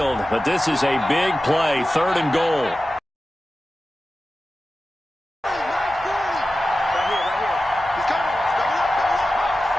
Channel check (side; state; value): both; normal; correlation 0.94